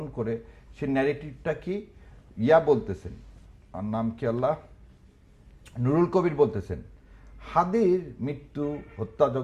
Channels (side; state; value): both; identical; correlation 1.00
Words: করে সে ন্যারেটিভটা কি বলতেছেন, আর নাম কি আল্লাহ, নুরুল কবির বলতেছেন হাদির মৃত্যু